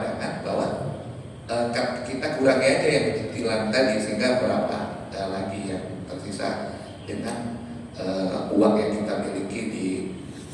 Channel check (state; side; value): identical; both; correlation 1.00